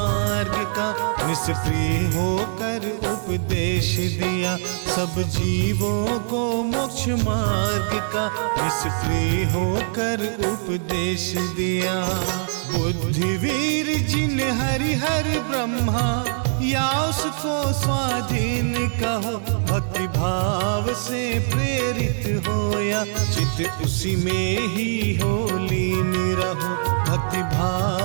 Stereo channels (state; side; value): silent; left; digital silence